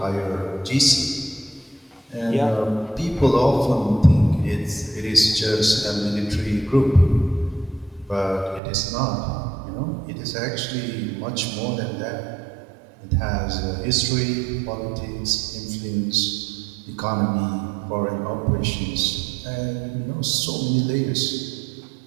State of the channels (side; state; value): left; drops out; at 8.6 s